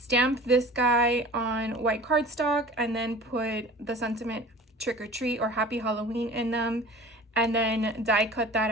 this guy on white cardstock and then put the sentiment trick or treat or happy Halloween in them, and then die cut that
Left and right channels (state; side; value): normal; both; correlation 0.41